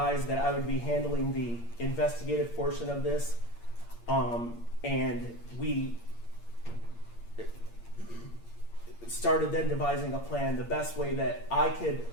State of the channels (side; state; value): right; late; 8.6 ms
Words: that I would be handling the investigative portion of this, and we started then devising a plan, the best way that I could